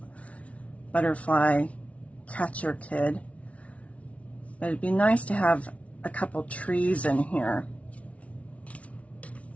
butterfly catcher kid. But it'd be nice to have a couple trees in here.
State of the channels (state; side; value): late; right; 0.065 ms